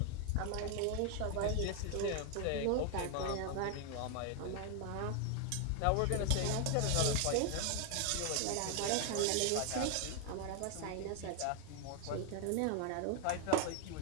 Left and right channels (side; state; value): both; different; correlation 0.00